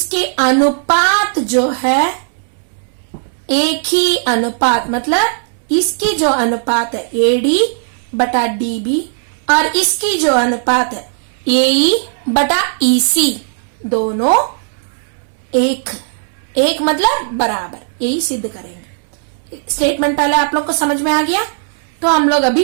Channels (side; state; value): left; silent; 65 dB below the other